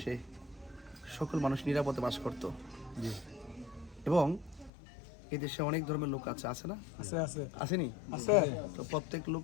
সকল মানুষ নিরাপদে বাস করত। এবং এই দেশে অনেক ধর্মের লোক আছে না? আসেনি? তো প্রত্যেক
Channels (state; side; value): drops out; right; at 4.7 s